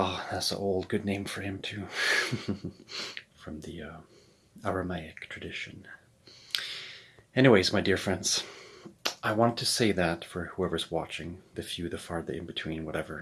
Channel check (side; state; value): both; identical; correlation 1.00